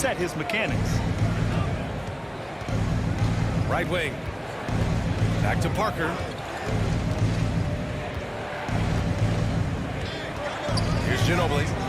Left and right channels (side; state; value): both; identical; correlation 1.00